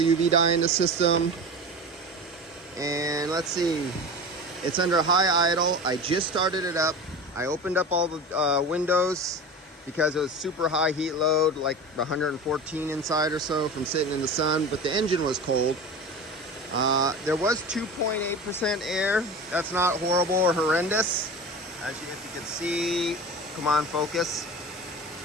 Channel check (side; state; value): both; normal; correlation 0.31